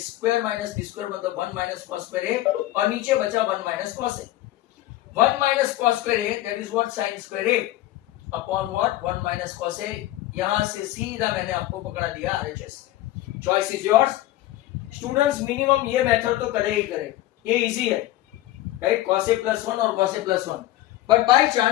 square minus b square, मतलब 1 माइनस कॉस स्क्वायर ए, और नीचे बचा 1 minus cos A. 1 minus cos square A that is what sine square A upon what 1 minus cos A. यहां से सीधा मैंने आपको पकड़ा दिया RHS। Choice is yours. Students minimum ये मेथड तो करे ही करे, ये इजी है, राइट, cos a प्लस 1 और cos a plus 1। But by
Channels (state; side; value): quieter; right; 15.5 dB